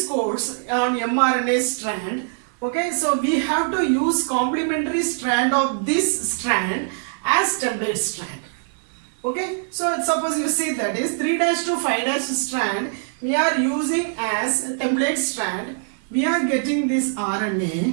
codes on mRNA strand, okay, so we have to use complementary strand of this strand as template strand. Okay, so suppose you see, that is 3' to 5' strand we are using as template strand. We are getting this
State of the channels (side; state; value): left; silent; 57 dB below the other